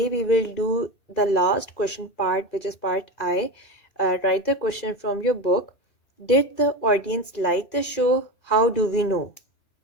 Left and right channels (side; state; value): right; late; 2.6 ms